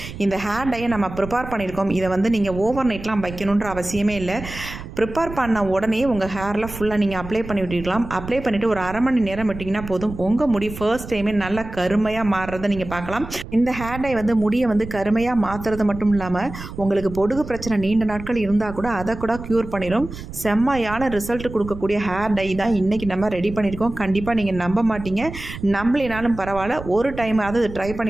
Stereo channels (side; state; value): right; noise; rumble, 12 dB below the sound